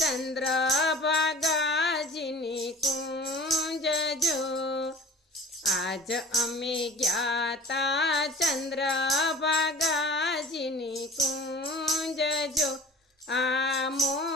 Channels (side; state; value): both; normal; correlation 0.42